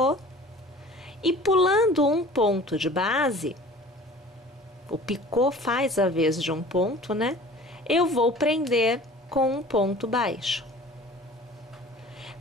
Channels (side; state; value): both; normal; correlation 0.45